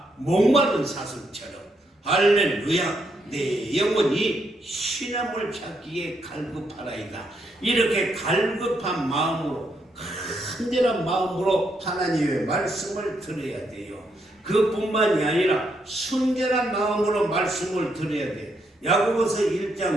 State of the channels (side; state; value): both; normal; correlation 0.77